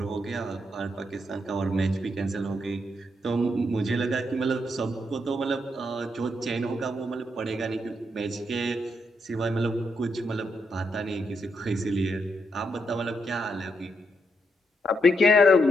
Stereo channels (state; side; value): normal; both; correlation 0.79